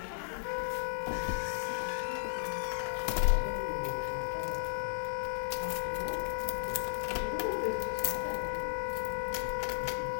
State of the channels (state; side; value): silent; right; digital silence